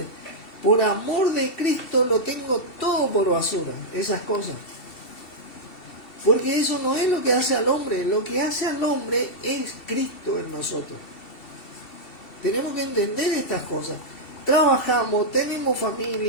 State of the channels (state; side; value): late; right; 2.7 ms